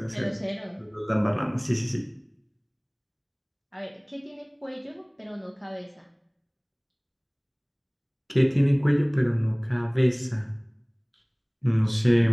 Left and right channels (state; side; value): identical; both; correlation 1.00